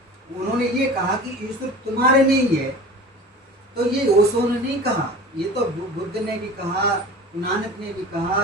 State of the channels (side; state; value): both; normal; correlation 0.39